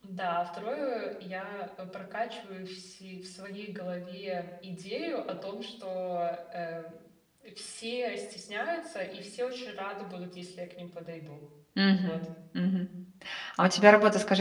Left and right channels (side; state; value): both; identical; correlation 1.00